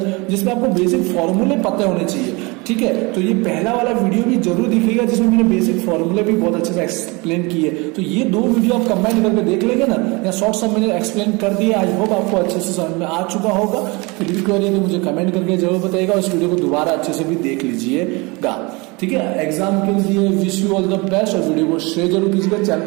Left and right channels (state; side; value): quieter; left; 26.5 dB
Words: जिसमें आपको बेसिक फॉर्मूले पता होने चाहिए, ठीक है। तो ये पहला वाला वीडियो भी जरूर दिखेगा जिसमें मैंने बेसिक फॉर्मूले भी बहुत अच्छे से एक्सप्लेन किए। तो ये 2 वीडियो आप कंबाइन करके देख लेंगे ना, या शॉर्ट सब मैंने एक्सप्लेन कर दिया। आई होप आपको अच्छे से समझ में आ चुका होगा। फिर भी क्वेरी तो मुझे कमेंट करके जरूर बताइएगा, उस वीडियो को दोबारा अच्छे से भी देख लीजिएगा, ठीक है। एग्जाम के लिए wish you all the best, और वीडियो को शेयर जरूर कीजिएगा, चैनल